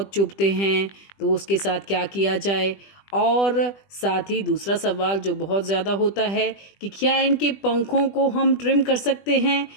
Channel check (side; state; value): right; late; 20 ms